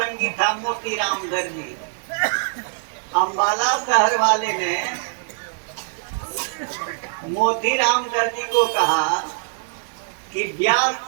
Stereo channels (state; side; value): silent; left; digital silence